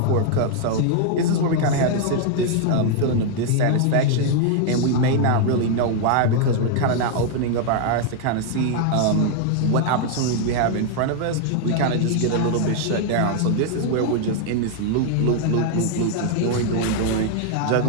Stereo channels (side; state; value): both; different; correlation 0.00